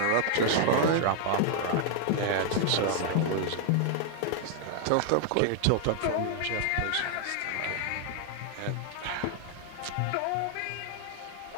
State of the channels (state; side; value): different; both; correlation 0.00